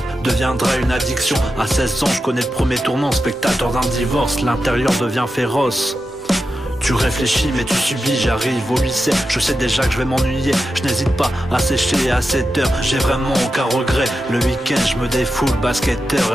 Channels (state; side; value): normal; both; correlation 0.90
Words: deviendra une addiction. À 16 ans, je connais le premier tournant, spectateur d'un divorce, l'intérieur devient féroce. Tu réfléchis mais tu subis, j'arrive au lycée, je sais déjà que je vais m'ennuyer. Je n'hésite pas à sécher à 7 heures, j'ai vraiment aucun regret. Le week-end je me défoule, basketteur